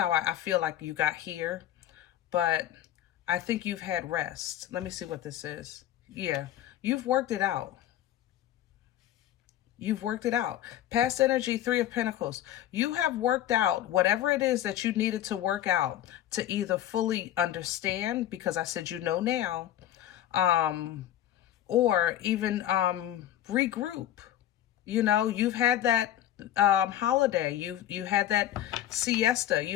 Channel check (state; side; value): quieter; right; 12.1 dB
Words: I feel like you got here. But I think you've had rest. Let me see what this is. Yeah, you've worked it out. You've worked it out. Past energy, 3 of Pentacles. You have worked out whatever it is that you needed to work out to either fully understand, because I said you know now, or even regroup. You know, you've had that holiday. You had that siesta.